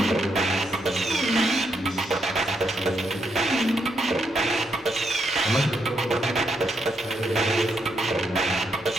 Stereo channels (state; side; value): normal; both; correlation 0.78